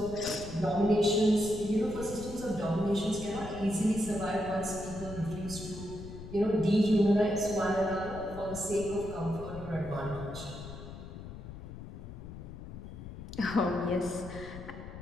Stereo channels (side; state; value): left; noise; rumble, 12 dB below the sound